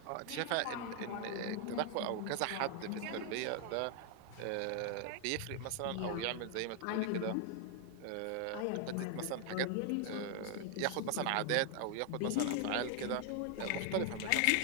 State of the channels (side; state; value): both; different; correlation 0.00